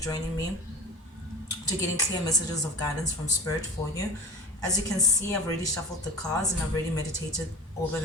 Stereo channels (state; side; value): normal; both; correlation 0.35